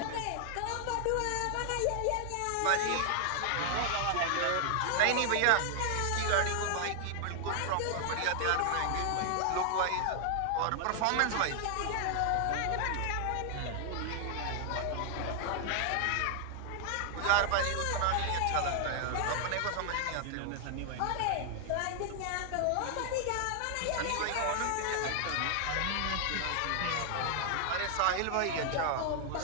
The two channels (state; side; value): different; both; correlation 0.00